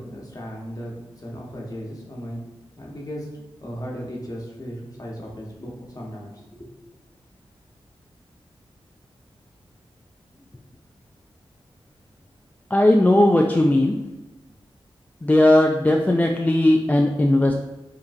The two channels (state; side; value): normal; both; correlation 0.95